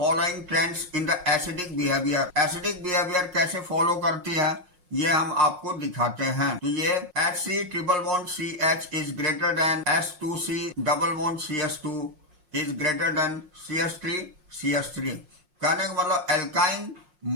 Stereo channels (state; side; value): late; left; 5.6 ms